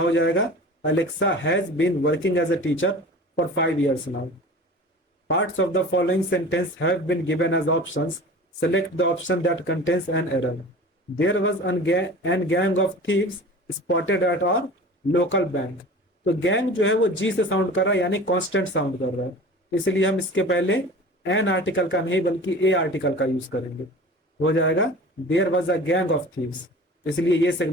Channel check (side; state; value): both; normal; correlation 0.39